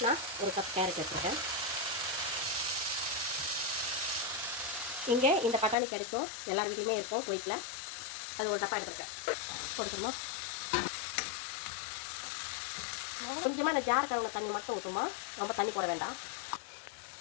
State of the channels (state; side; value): drops out; right; at 5.8 s